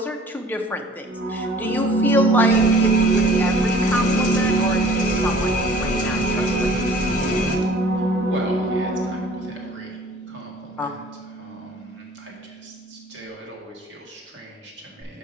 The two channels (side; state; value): both; normal; correlation 0.51